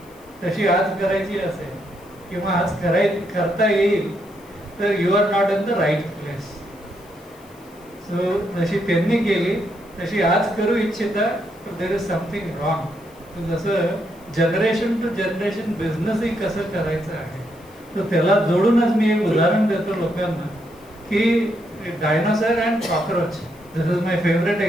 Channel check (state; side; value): noise; left; hiss, 28 dB below the sound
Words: तशी आज करायची असेल किंवा आज करता येईल तर you are not in the right place. So जशी त्यांनी केली तशी आज करू इच्छिता देर इज समथिंग रॉंग. जसं जनरेशन टू जनरेशन बिझनेसही कसं करायचं आहे तर त्याला जोडूनच मी एक उदाहरण देतो लोकांना की dinosaur and cockroach. This is my favourite